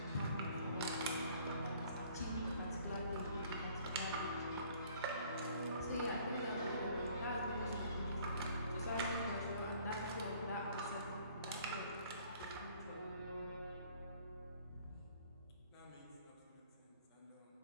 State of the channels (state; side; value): inverted; both; correlation -0.57